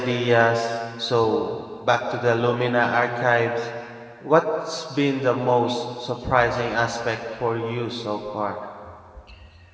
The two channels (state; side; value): identical; both; correlation 1.00